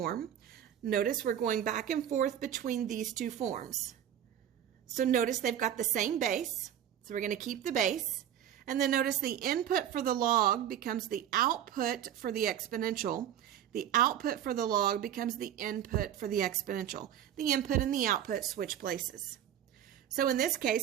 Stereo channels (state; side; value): quieter; left; 10.4 dB